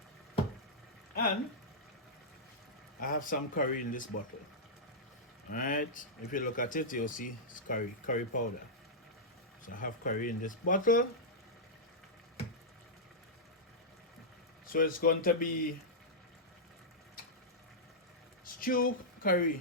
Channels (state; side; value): normal; both; correlation -0.09